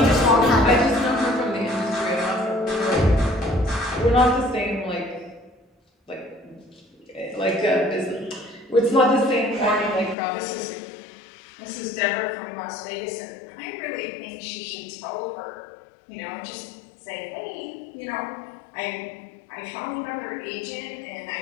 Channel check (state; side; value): drops out; right; at 10.2 s